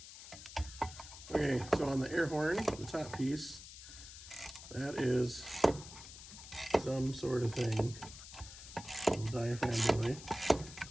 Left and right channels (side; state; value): left; noise; hiss, 14 dB below the sound